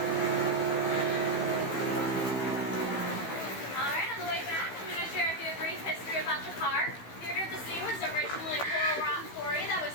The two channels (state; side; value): late; right; 15 ms